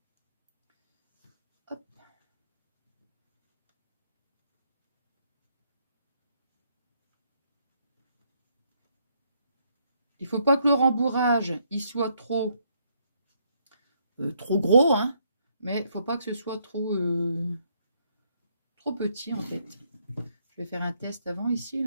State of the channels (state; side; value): inverted; both; correlation -0.72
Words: Hop. Il faut pas que le rembourrage, il soit trop gros, hein. Mais il faut pas que ce soit trop petit, en fait. Je vais faire un test avant ici,